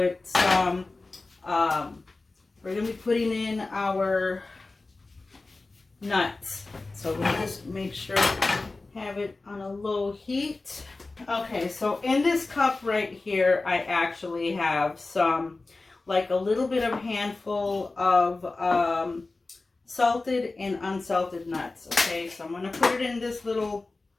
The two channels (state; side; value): quieter; right; 3.4 dB